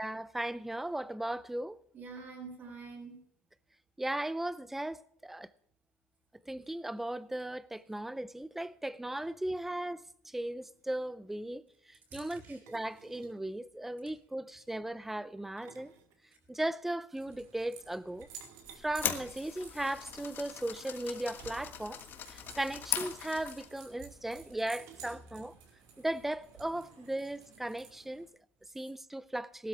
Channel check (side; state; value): both; normal; correlation 0.87